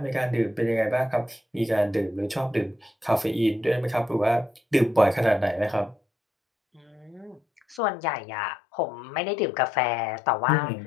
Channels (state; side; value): drops out; right; at 7.8 s